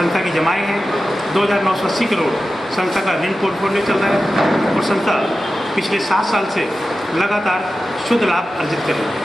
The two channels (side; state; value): both; normal; correlation 0.93